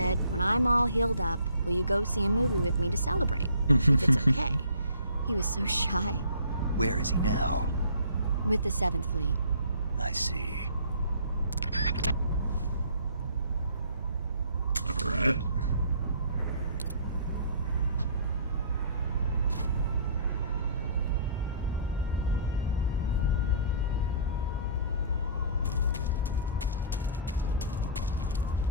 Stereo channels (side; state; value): both; inverted; correlation -0.51